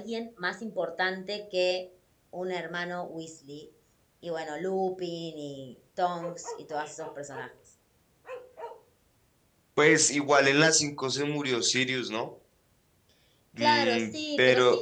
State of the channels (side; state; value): both; identical; correlation 1.00